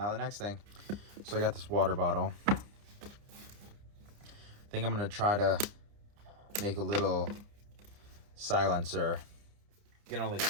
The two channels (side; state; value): left; late; 30 ms